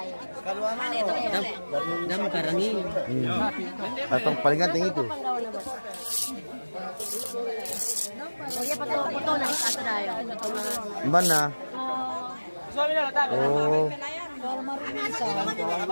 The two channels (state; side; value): inverted; both; correlation -1.00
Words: Dam karangi. Atau paling ganteng itu. Oh, ya foto na satu dayo. Mana? Oh,